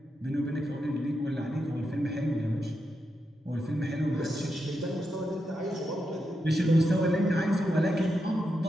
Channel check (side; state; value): both; normal; correlation 0.86